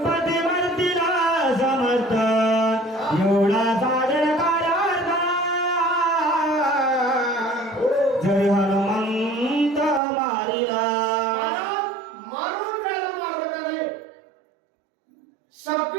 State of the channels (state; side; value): drops out; left; at 10.0 s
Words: मरतीला समर्थ एवढा साधन कार्यार्थ जरी हनुमंत मारिला. महाराज, मारून त्याला मारलं का नाही?